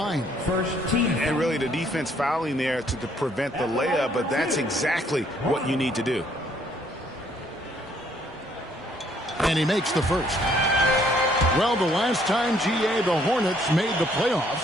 And really the defense fouling there to prevent the layup, but that's exactly what you need to do. And he makes the first. Well, the last time, GA, the Hornets made the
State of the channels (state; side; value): normal; both; correlation 0.65